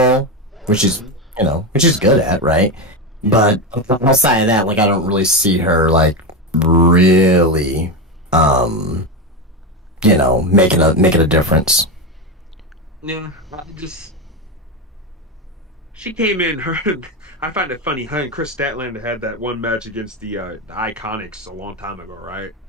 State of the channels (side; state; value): both; normal; correlation 0.15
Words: which is good at, right? But outside of that, I don't really see her really, making a difference. Yeah, she came in. I find it funny. Her and Chris Statlander had that one match against the Iconics a long time ago, right?